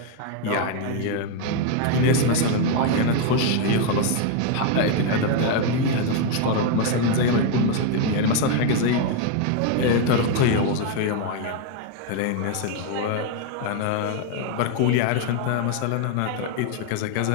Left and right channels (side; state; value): both; different; correlation 0.01